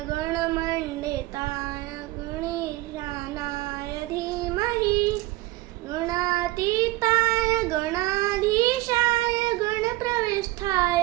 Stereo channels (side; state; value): left; quieter; 19.4 dB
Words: गणमण्डिताय गणेशानाय धीमहि गणातीताय गणाधीशाय गणप्रविष्ठाय